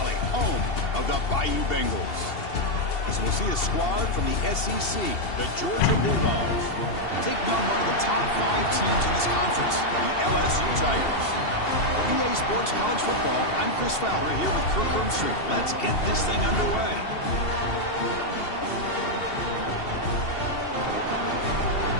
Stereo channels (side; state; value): right; late; 2.7 ms